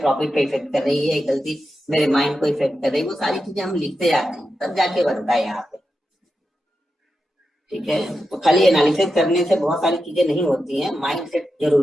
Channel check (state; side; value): normal; both; correlation 0.89